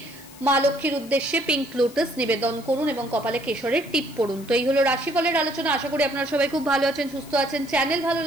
মা লক্ষ্মীর উদ্দেশ্যে পিঙ্ক লোটাস নিবেদন করুন এবং কপালে কেশরের টিপ পড়ুন। তো এই হলো রাশিফলের আলোচনা। আশা করি আপনারা সবাই খুব ভালো আছেন, সুস্থ আছেন। চ্যানেল ভালো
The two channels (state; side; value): noise; left; hiss, 20 dB below the sound